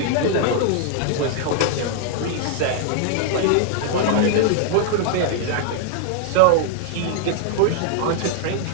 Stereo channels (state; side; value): different; both; correlation 0.00